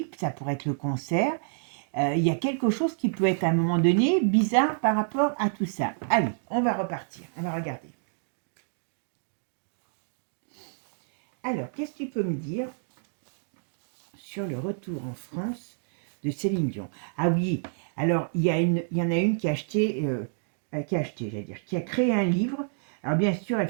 ça pourrait être le cancer. Il y a quelque chose qui peut être à un moment donné bizarre par rapport à tout ça. Allez, on va repartir, on va regarder. Alors, qu'est-ce que tu peux me dire sur le retour en France de Céline Dion? Ah oui, alors il y en a une qui a acheté, qui a créé un livre. Alors bien sûr, elle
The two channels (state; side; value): silent; left; digital silence